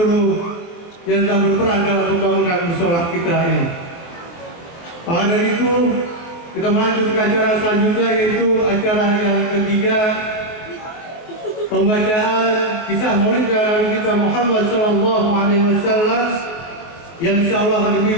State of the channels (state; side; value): late; right; 23 ms